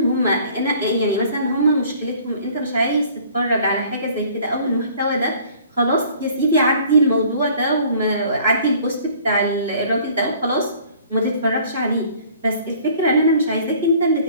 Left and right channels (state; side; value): inverted; both; correlation -0.53